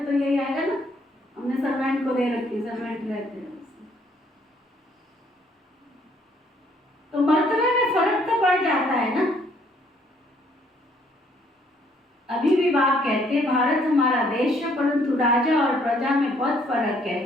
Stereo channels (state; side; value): normal; both; correlation 0.65